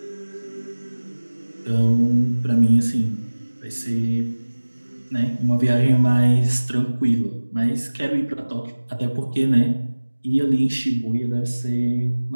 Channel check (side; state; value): both; inverted; correlation -1.00